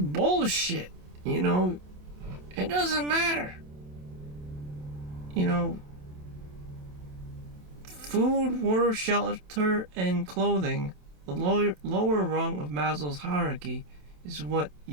It doesn't matter. Food, water, shelter, and clothing, the lower rung of Maslow's hierarchy, is what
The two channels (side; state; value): left; late; 27 ms